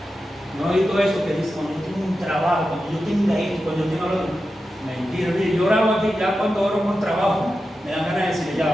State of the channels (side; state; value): both; normal; correlation 0.91